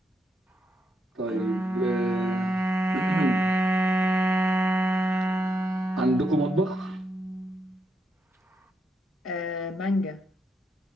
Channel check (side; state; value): both; normal; correlation 0.80